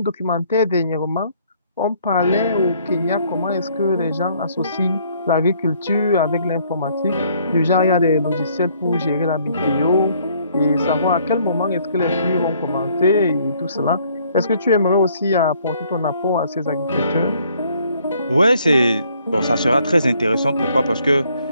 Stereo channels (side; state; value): both; inverted; correlation -0.64